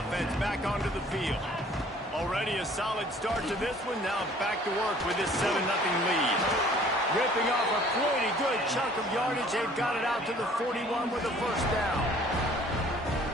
back onto the field. Already a solid start to this one. Now back to work with this 7-0 lead. Ripping off a pretty good chunk of yardage. They've got it out to the 41 with a first down.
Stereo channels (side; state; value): both; normal; correlation 0.54